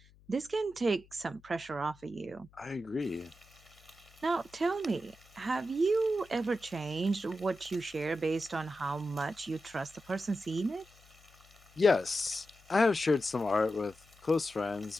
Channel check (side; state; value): left; noise; hum, 27 dB below the sound